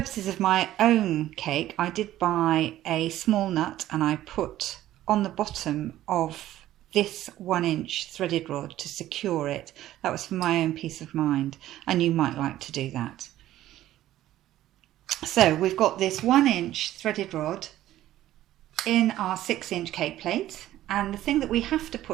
of my own cake, I did buy a small nut and I put on the bottom of this 1 inch threaded rod to secure it. That was for my own peace of mind, and you might like to do that. So we've got this 1 inch threaded rod in our 6 inch cake plate, and the thing that we have to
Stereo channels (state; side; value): quieter; left; 13.8 dB